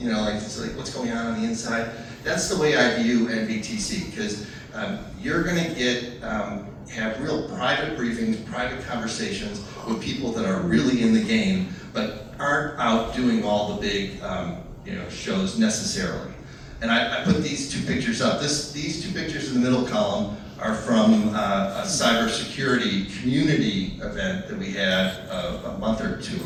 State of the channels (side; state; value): both; identical; correlation 1.00